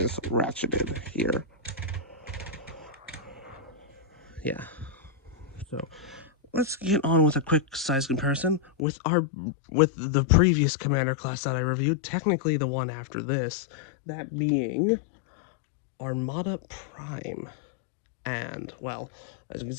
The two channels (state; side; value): drops out; right; at 8.7 s